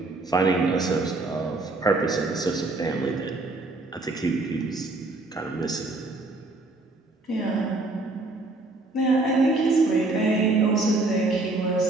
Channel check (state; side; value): quieter; left; 3.1 dB